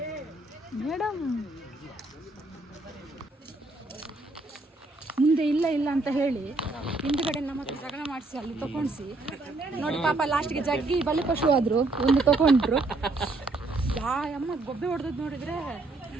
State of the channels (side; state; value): left; quieter; 3.1 dB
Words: ಮೇಡಮ್ ಮುಂದೆ ಇಲ್ಲ ಅಂತ ಹೇಳಿ ಹಿಂದ್ಗಡೆ ನಮ್ಮ ಹತ್ರ ಜಗಳ ಮಾಡಿಸಿ ಅಲ್ಲಿ ತಗೊಂಡ್ಸಿ ನೋಡಿ. ಪಾಪ ಲಾಸ್ಟ್ಗೆ ಜಗ್ಗಿ ಬಲಿಪಶು ಆದ್ರು, ಒಂದು ತಗೊಂಡ್ರು. ಅಮ್ಮ ಗೊಬ್ಬೆ ಹೊಡೆದ್ ನೋಡಿದ್ರೆ